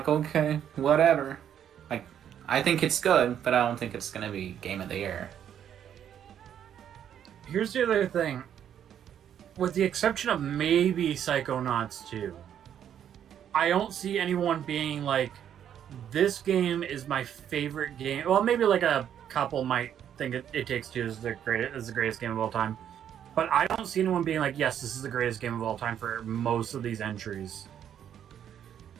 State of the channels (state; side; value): quieter; left; 9.5 dB